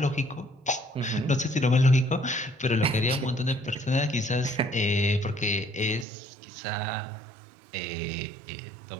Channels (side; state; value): left; drops out; at 6.1 s